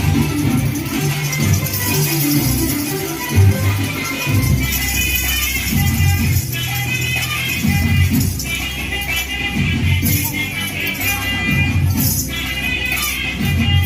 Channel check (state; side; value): identical; both; correlation 1.00